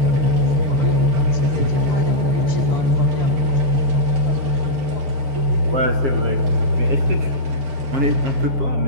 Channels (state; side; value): late; left; 7.4 ms